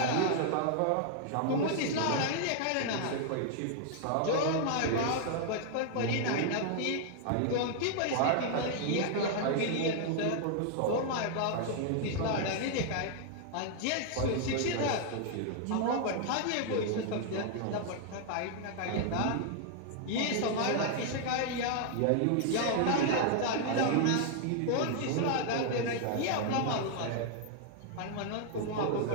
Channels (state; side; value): different; both; correlation 0.00